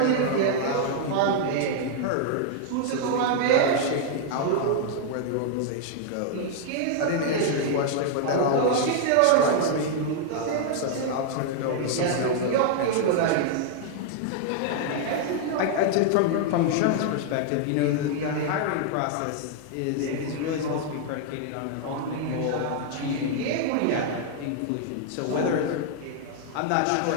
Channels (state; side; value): different; both; correlation 0.00